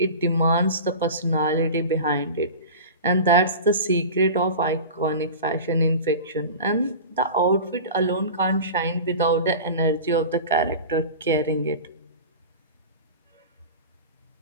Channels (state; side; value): inverted; both; correlation -0.32